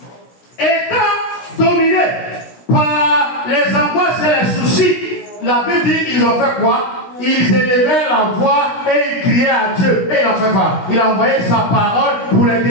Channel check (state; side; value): late; right; 16 ms